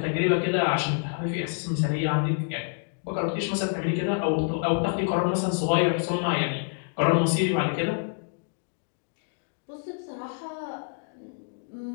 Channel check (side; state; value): right; silent; digital silence